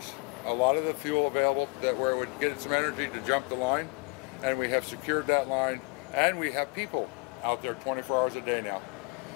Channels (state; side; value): quieter; right; 28.8 dB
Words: a lot of the fuel available that where it would get some energy to jump the line, and we have secured that line, and we have people out there 24 hours a day now.